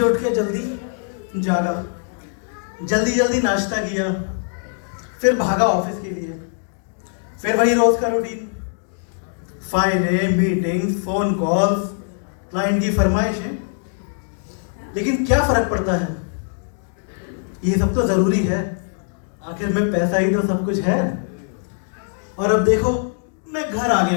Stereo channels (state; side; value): silent; right; digital silence